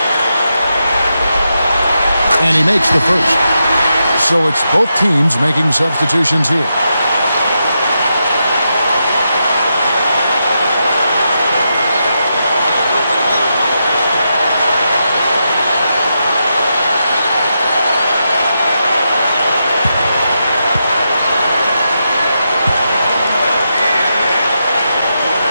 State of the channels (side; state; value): both; inverted; correlation -0.85